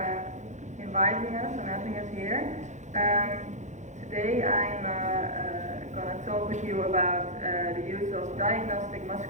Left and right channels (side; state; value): left; late; 0.34 ms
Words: inviting us and having us here. Today I'm going to talk with you about the use of diagnostic